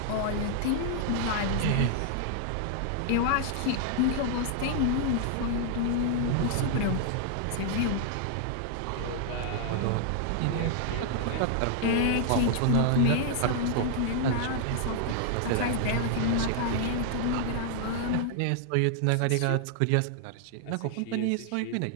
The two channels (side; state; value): both; different; correlation 0.00